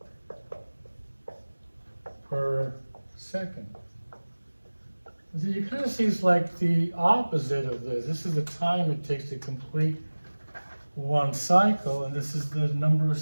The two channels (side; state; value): both; inverted; correlation -1.00